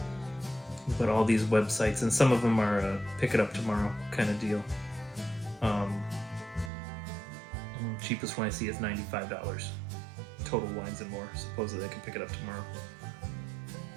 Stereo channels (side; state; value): left; drops out; at 6.7 s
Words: but all these websites, and some of them are pick it up tomorrow kind of deal. Cheapest one I see is $95. Total Wines and More. Supposedly I can pick it up tomorrow.